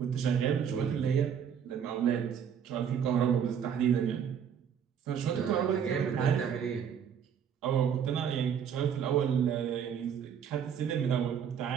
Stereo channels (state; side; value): quieter; left; 8.0 dB